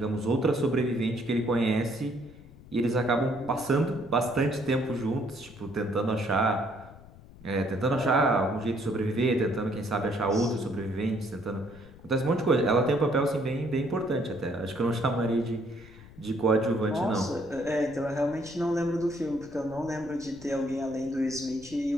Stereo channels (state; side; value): noise; left; rumble, 20 dB below the sound